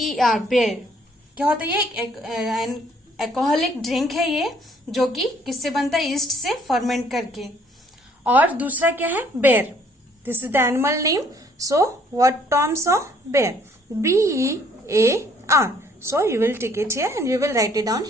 बेर. क्या होता है ये? एक एल्कोहलिक ड्रिंक है ये, जो कि किससे बनता है? ईस्ट से फर्मेंट करके. और दूसरा क्या है? बेर. This is the animal name. So what Tom saw? बेर. BEAR. So you will take it here and you will write it down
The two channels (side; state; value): both; normal; correlation 0.62